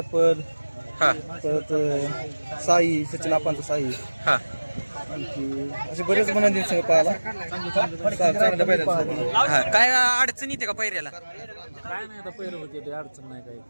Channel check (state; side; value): inverted; both; correlation -1.00